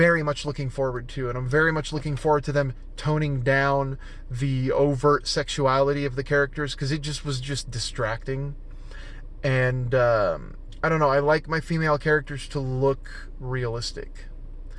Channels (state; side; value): identical; both; correlation 1.00